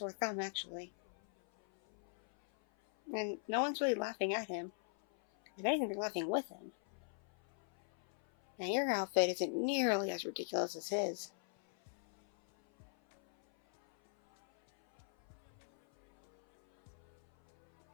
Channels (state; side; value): silent; right; 51 dB below the other